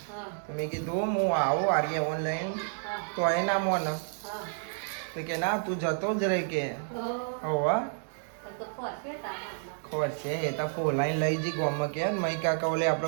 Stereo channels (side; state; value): left; silent; digital silence